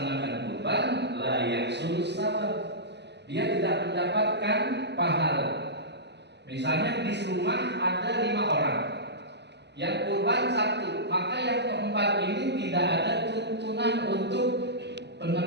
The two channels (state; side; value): late; left; 0.50 ms